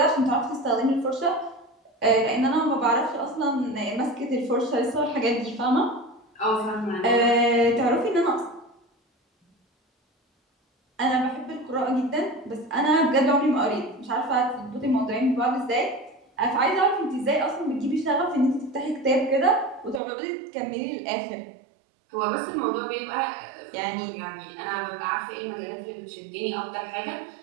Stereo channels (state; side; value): drops out; left; at 20.0 s